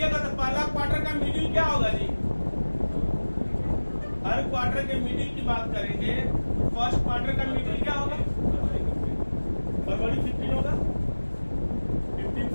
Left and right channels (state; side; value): inverted; both; correlation -1.00